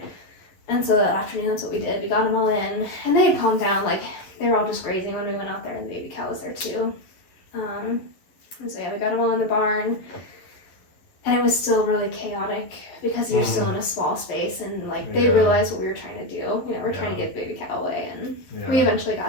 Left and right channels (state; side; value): late; right; 11 ms